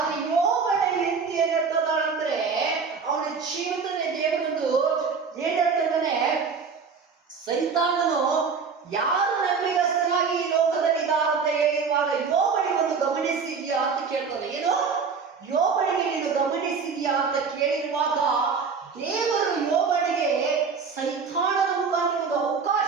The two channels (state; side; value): quieter; left; 5.5 dB